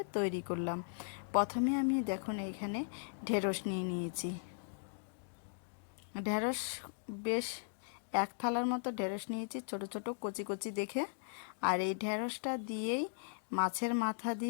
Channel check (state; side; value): silent; right; digital silence